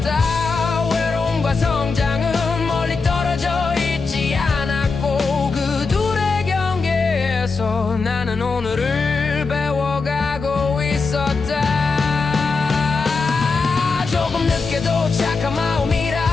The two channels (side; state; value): right; quieter; 4.4 dB